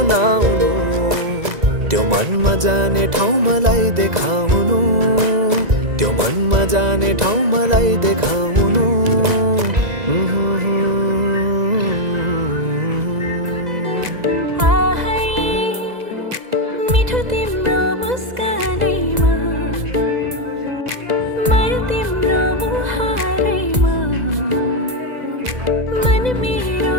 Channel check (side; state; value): left; late; 2.0 ms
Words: त्यो मनमा जाने ठाउँ मलाई देखाउनु त्यो मनमा जाने ठाउँ मलाई देखाउनु मिठो तिम्रो मुस्कानैमा माया तिम्रो मुहारैमा मन मेरो